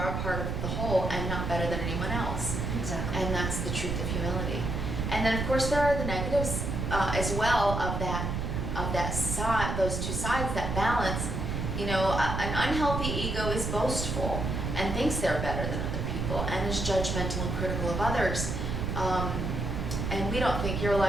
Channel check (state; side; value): noise; right; rumble, 2 dB below the sound